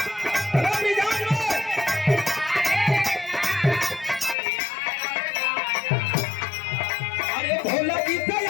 भोला जी से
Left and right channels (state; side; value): drops out; right; at 4.4 s